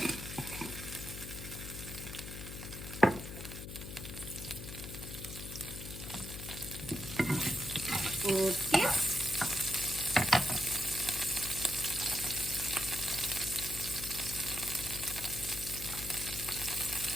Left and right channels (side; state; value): left; noise; hum, 9 dB below the sound